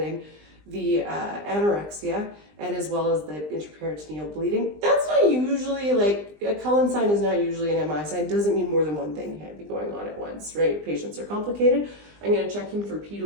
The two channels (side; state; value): left; late; 20 ms